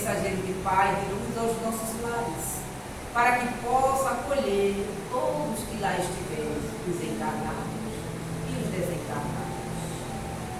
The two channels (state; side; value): identical; both; correlation 1.00